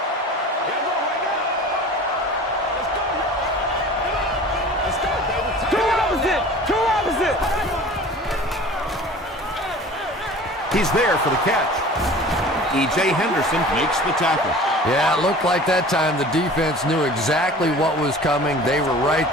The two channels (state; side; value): normal; both; correlation 0.42